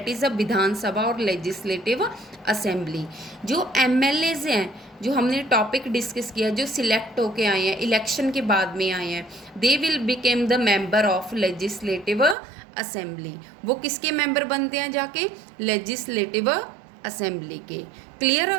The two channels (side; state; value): left; drops out; at 12.4 s